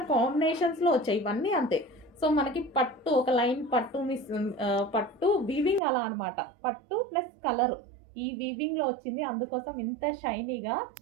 కాంబినేషన్స్లో వచ్చాయి, ఇవన్నీ అంతే. సో మనకి పట్టు ఒక లైన్ పట్టు పట్టు వీవింగ్ అలా అనమాట. పట్టు ప్లస్ కలర్ ఈ వీవింగ్లో వచ్చింది, అందుకోసం ఇంత షైనీగా.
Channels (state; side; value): drops out; left; at 5.8 s